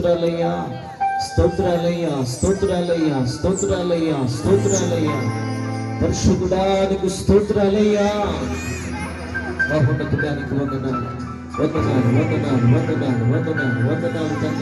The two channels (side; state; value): both; identical; correlation 1.00